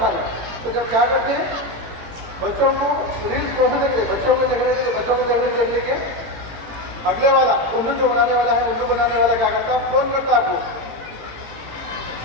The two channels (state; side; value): late; left; 18 ms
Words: खाली। तो जब क्या करते हैं, बच्चों को रील्स को देते, बच्चों को देखने के लिए बच्चों को देखने लेके अगले वाला उल्लू जो बनाने वाला है, उल्लू बनाने वाला क्या करता है, फोन करता आपको,